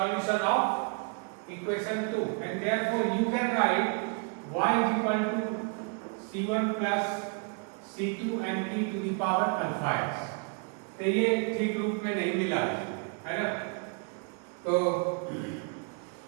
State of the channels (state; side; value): quieter; left; 37.5 dB